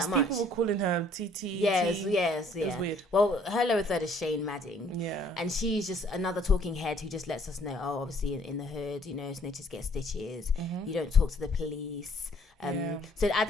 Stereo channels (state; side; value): normal; both; correlation 0.60